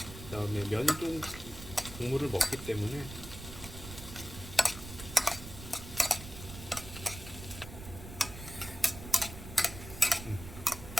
그다음에 면이 좀 국물을 먹기 때문에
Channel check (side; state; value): right; noise; rumble, 12 dB below the sound